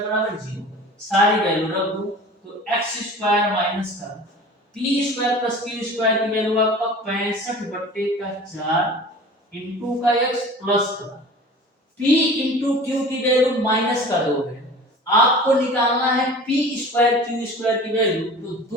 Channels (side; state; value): both; normal; correlation 0.40